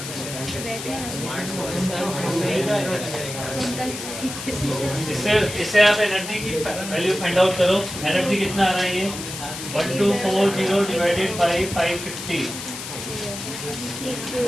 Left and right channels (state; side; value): noise; left; hiss, 8 dB below the sound